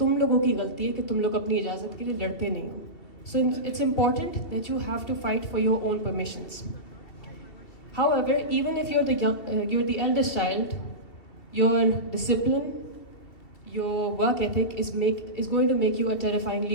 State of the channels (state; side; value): late; right; 2.7 ms